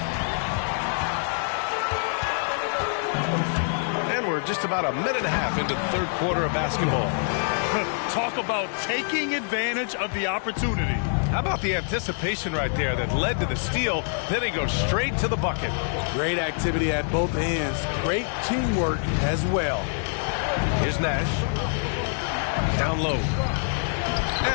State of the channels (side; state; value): right; silent; 61 dB below the other